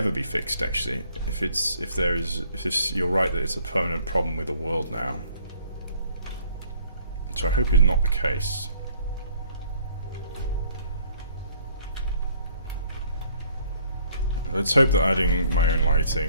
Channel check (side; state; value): both; inverted; correlation -0.60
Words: be fixed. Actually, if you're right that it's a permanent problem with the world now. So I hope it's not the case. Let's hope that adding my own